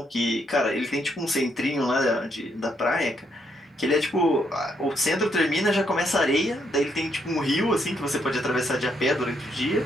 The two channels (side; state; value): both; normal; correlation 0.75